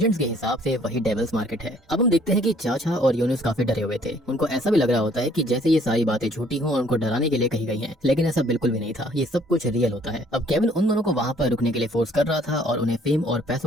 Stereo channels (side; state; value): both; normal; correlation 0.60